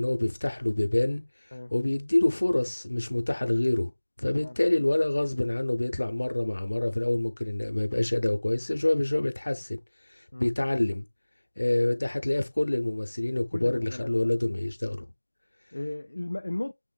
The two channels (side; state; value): both; inverted; correlation -1.00